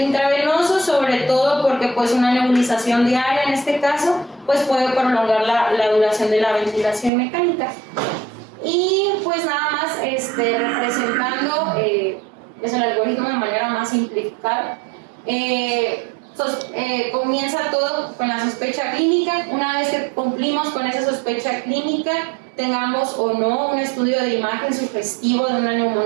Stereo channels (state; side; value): drops out; left; at 7.1 s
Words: intravenoso, sobre todo porque pues una nebulización diaria en este caso pues puede prolongar la duración de la ventilación mecánica. Y pues nada más representando es el algoritmo de manera más simplificada. Comienza todo con la sospecha clínica. Una vez que cumplimos con esa sospecha clínica, tengamos o no un estudio de imagen sugestivo de una